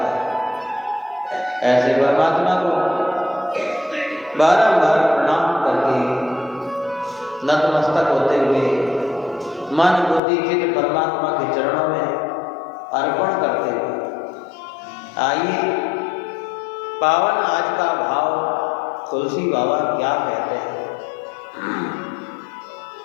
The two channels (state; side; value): drops out; right; at 10.2 s